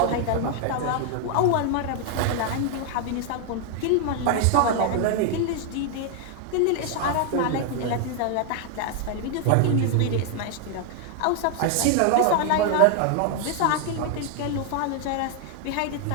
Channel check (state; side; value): different; both; correlation 0.00